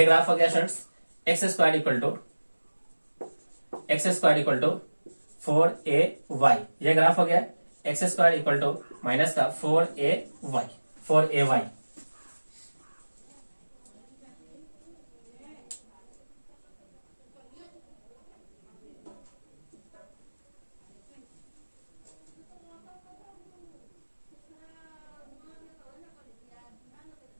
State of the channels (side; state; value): both; inverted; correlation -1.00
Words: ग्राफ हो गया students x square equal to 4ay। ये ग्राफ हो गया x square equal to minus का 4ay।